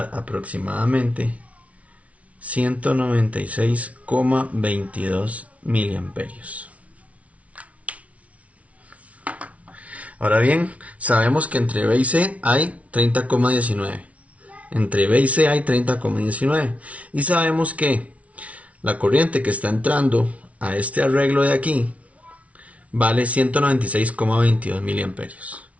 dar aproximadamente 196,22 miliamperios. Ahora bien, sabemos que entre B y C hay 30,19. Entre B y C hay 30,19. Y sabemos que la corriente que está entrando a este arreglo de aquí vale 196,22 miliamperios.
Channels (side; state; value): left; late; 0.066 ms